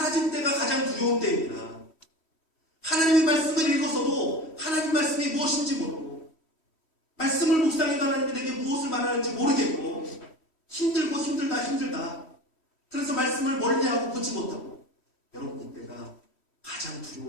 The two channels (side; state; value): right; late; 3.1 ms